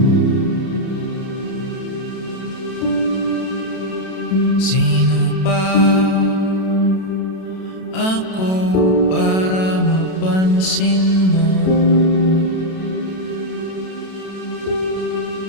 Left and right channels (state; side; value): late; right; 32 ms